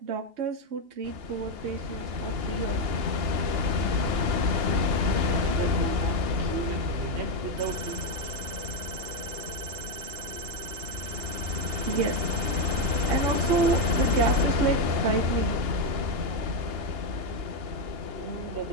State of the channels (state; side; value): late; left; 2.8 ms